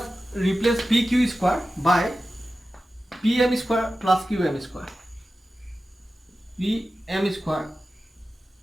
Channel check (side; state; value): both; normal; correlation 0.94